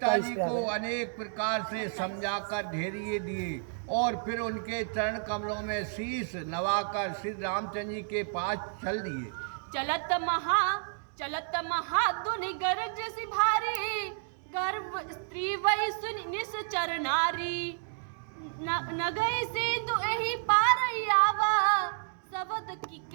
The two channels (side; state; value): left; silent; digital silence